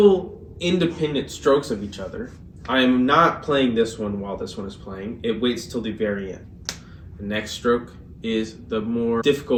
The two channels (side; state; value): both; identical; correlation 1.00